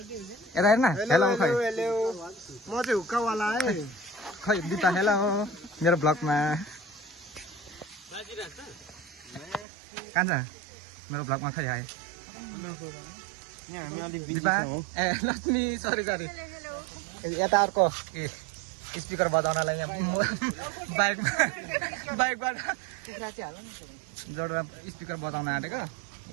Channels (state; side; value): drops out; left; at 9.7 s